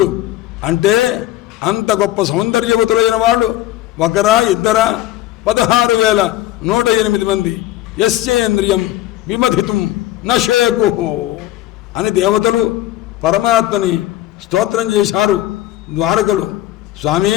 అంటే అంత గొప్ప సౌందర్యవతులైన వాళ్ళు ఒకరా ఇద్దరా? 16,108 మంది. యస్యేంద్రియం విమధితుం నశేకు అని దేవతలు పరమాత్మని స్తోత్రం చేశారు ద్వారకలు. స్వామి,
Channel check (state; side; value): quieter; right; 14.7 dB